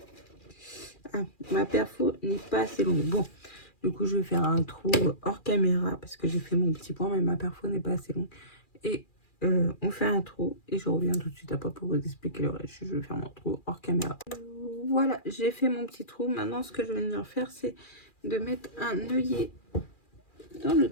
Ah, ma perfo n'est pas assez longue. Bon, du coup, je vais faire un trou hors caméra parce que j'ai fait mon petit point, mais ma perfo n'est pas assez longue. Et on fait un trou et je reviens tout de suite après pour vous expliquer le reste. Je vais faire mon trou hors caméra. Voilà, j'ai fait mon petit trou. Maintenant, ce que je vais venir faire, c'est de mettre un œillet dans le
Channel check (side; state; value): right; late; 2.4 ms